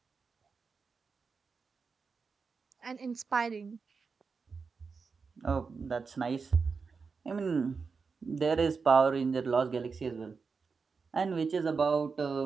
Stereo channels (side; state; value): left; quieter; 5.0 dB